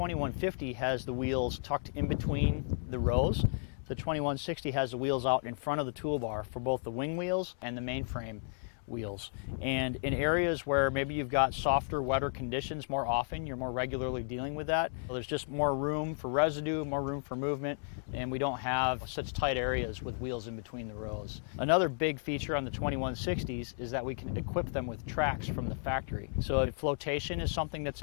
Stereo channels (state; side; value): silent; right; 55 dB below the other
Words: has the wheels tucked in between the rows, the 2160 has the wheels out in front of the toolbar for both the wing wheels and the mainframe wheels. And in areas where maybe you've got softer, wetter conditions more often, you're more regularly dealing with that, well, there's just more room for residue, more room for movement, and we don't have such tight areas with wheels in between the rows. Another big feature on the 2160s is that we can equip them with tracks from the factory. So if flotation is something that's